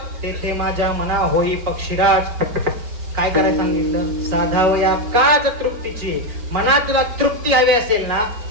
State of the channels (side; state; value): left; late; 5.3 ms